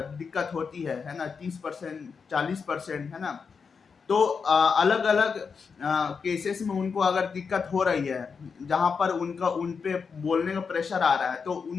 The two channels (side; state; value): right; quieter; 5.6 dB